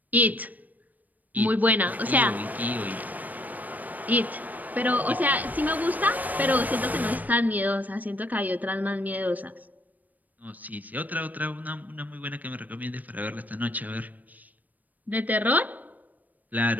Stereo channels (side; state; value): left; late; 0.081 ms